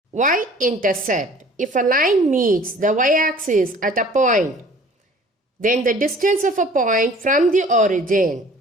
Y-intercept. If a line meets the y-axis at a point, then the distance of a point from the origin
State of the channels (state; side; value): normal; both; correlation 0.50